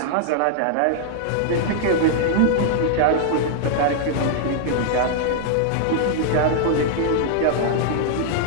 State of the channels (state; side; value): different; both; correlation -0.01